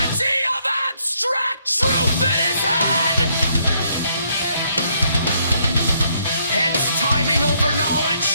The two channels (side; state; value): both; inverted; correlation -0.71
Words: of abstract truth in his head. Hence timing over knowledge,